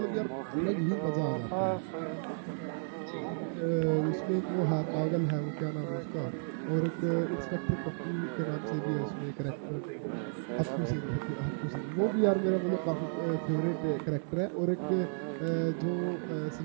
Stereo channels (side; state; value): left; silent; digital silence